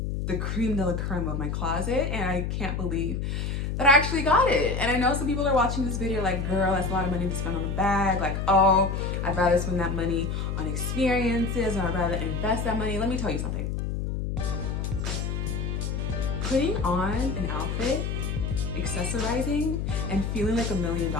the creme de la creme of my closet, and I can't believe that I actually got it. And I know some people are watching this video like, girl, that's a lot of money to spend on a bag. Like, oh, I'd rather spend that money on experiences, or I'd rather invest that money. Let me tell you something. Putting on an outfit, accessorizing, and feeling like $1 million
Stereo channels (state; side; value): noise; left; hum, 2 dB below the sound